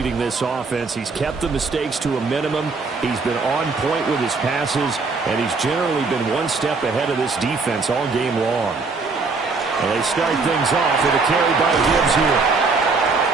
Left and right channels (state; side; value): quieter; left; 4.2 dB